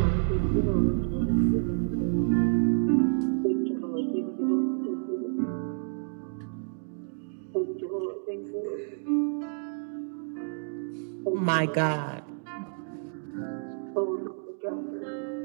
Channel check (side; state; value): left; silent; digital silence